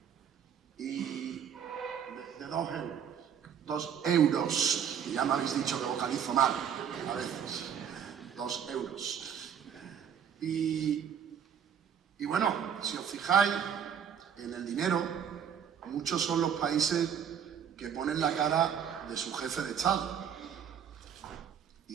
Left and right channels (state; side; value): quieter; left; 8.2 dB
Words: Y de 2 euros. 2 euros. Y ya me habéis dicho que vocalizo mal a veces. 2 euros. Y bueno, si os fijáis en el dinero, muchos son los países que ponen la cara de su jefe de Estado.